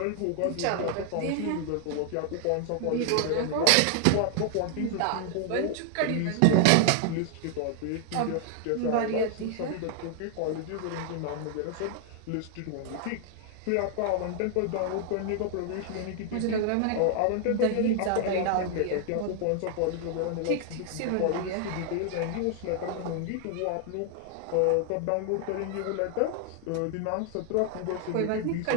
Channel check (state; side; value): different; both; correlation 0.00